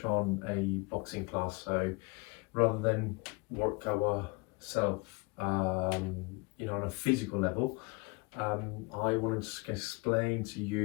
on a boxing class. So rather than work ourselves on a physical level, I wanted to explain to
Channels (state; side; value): quieter; right; 28.5 dB